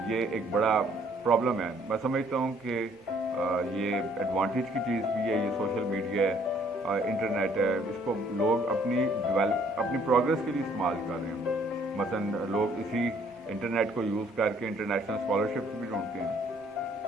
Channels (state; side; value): normal; both; correlation 0.62